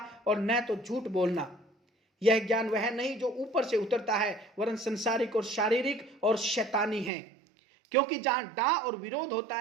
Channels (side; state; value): left; drops out; at 7.1 s